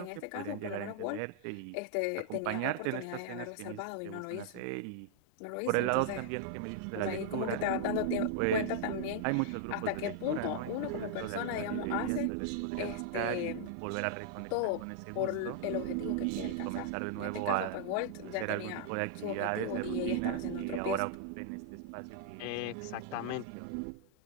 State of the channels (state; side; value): different; both; correlation -0.01